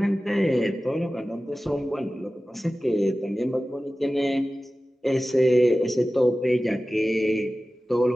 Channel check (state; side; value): normal; both; correlation 0.96